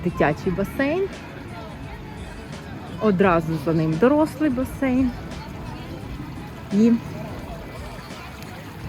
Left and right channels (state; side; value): identical; both; correlation 1.00